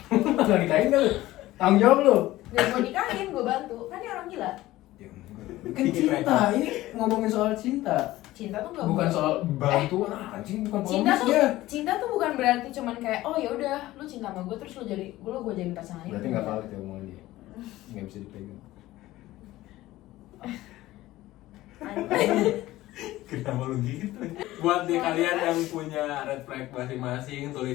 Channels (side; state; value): right; quieter; 16.6 dB